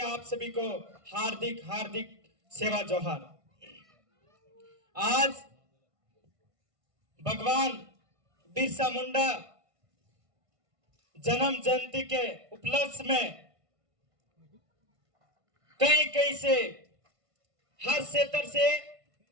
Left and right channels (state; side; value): late; left; 1.5 ms